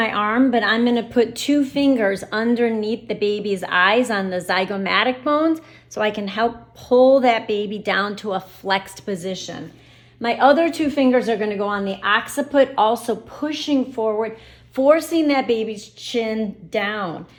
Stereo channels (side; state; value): both; identical; correlation 1.00